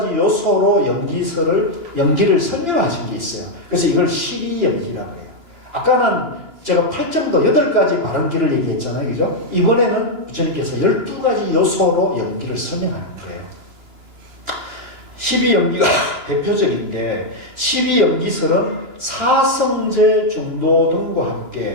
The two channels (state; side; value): late; left; 2.9 ms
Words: 요소로 연기를 설명하신 게 있어요. 그래서 이걸 12연기라고 해요. 아까는 제가 8정도 8가지 바른기를 얘기했잖아요. 그죠? 이번에는 부처님께서 12가지 요소로 연기를 설명하는 거예요. 12연기가 대표적인데 12연기설은 사성제 중도 등과